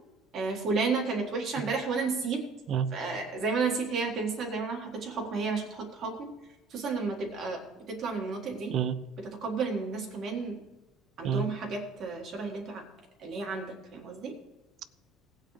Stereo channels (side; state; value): left; quieter; 4.4 dB